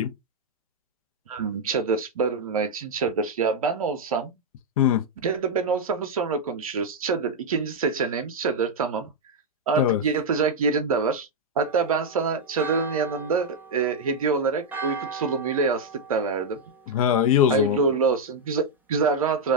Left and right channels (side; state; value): both; normal; correlation -0.01